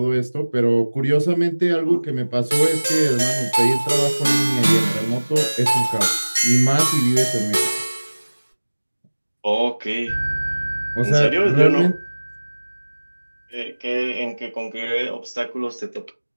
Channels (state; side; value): inverted; both; correlation -1.00